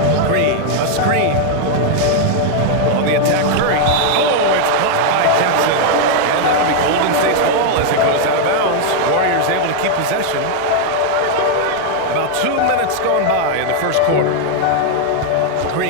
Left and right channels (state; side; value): different; both; correlation 0.00